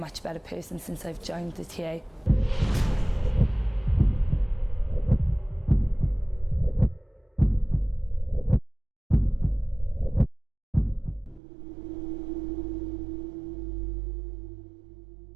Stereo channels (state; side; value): drops out; left; at 11.4 s